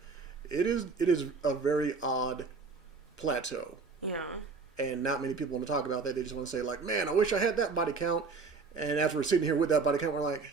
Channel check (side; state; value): left; quieter; 4.5 dB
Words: It is a very odd plateau. Yeah. And not many people want to talk about that. They just want to say like, man, I wish I had that body count. And after we're sitting here with that body count, we're like,